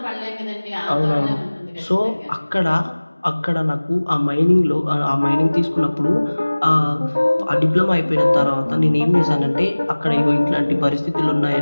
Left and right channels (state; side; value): inverted; both; correlation -1.00